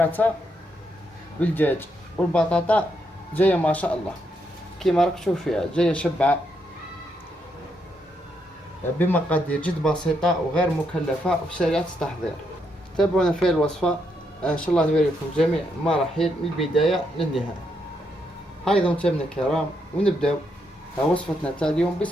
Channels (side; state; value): both; normal; correlation 0.78